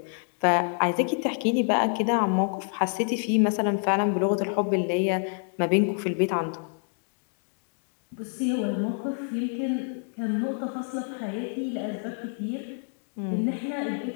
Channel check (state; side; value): silent; right; 58 dB below the other